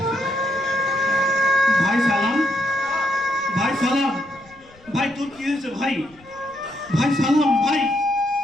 ভাই সালাম, ভাই সালাম, ভাই তোর কি হয়েছে ভাই? ভাই সালাম, ভাই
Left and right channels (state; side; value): noise; left; rumble, 27 dB below the sound